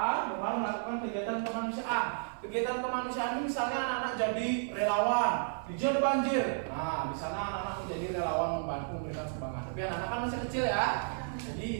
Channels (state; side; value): silent; left; 56 dB below the other